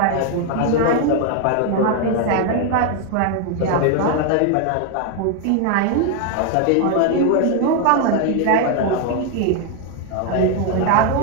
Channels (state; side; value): different; both; correlation 0.01